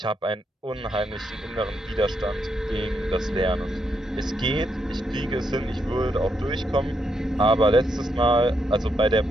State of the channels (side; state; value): both; normal; correlation 0.79